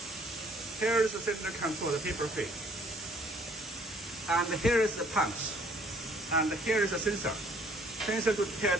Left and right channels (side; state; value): both; normal; correlation 0.60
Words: Here is the cylinder control, the paper feed. And here is the punch. And here is the sensor. Sensor to